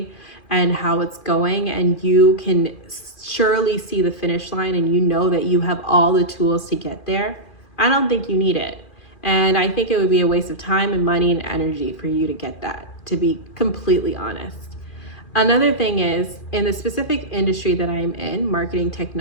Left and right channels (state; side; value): late; right; 2.4 ms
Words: and how it's going, and you can surely see the finish line and you know that you have all the tools to get there, I don't think you need it. And I think it would be a waste of time and money and energy for you to get that, to be completely honest. Another thing is, in the specific industry that I'm in, marketing